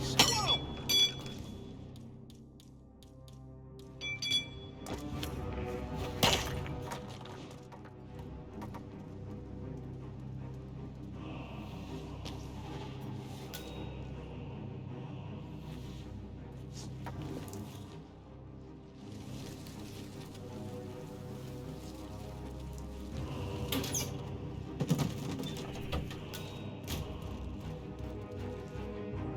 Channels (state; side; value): identical; both; correlation 1.00